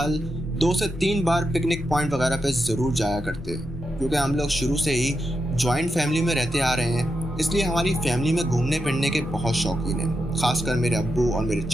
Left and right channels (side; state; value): both; normal; correlation 0.86